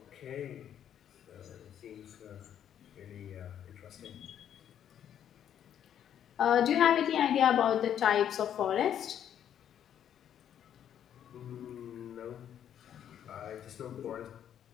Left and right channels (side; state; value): right; quieter; 9.7 dB